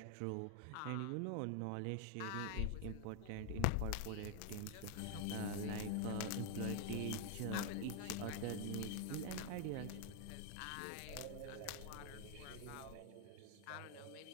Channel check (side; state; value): both; different; correlation 0.00